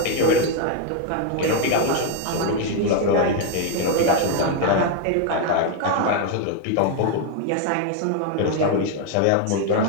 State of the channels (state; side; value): different; both; correlation 0.01